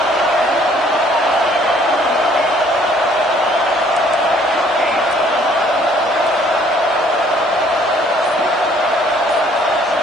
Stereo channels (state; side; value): normal; both; correlation 0.60